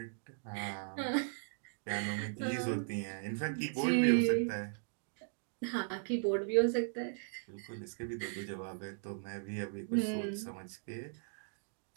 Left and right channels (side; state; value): left; silent; digital silence